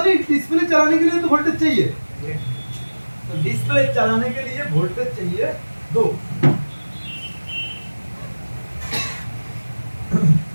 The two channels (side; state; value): both; inverted; correlation -1.00